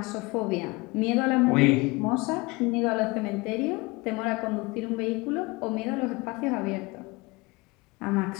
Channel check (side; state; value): right; quieter; 24.5 dB